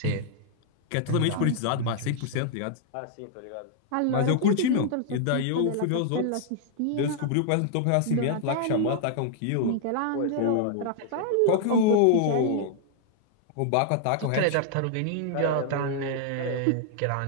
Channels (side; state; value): both; different; correlation 0.00